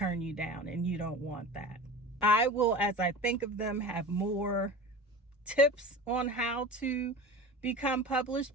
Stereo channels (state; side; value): normal; both; correlation 0.34